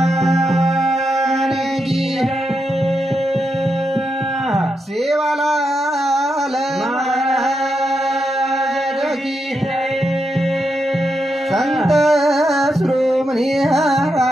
की सेवालाल महाराज की संत श्रोमणी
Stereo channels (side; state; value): both; normal; correlation 0.84